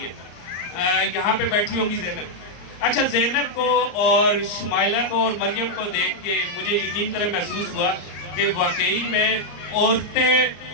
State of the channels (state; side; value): late; right; 34 ms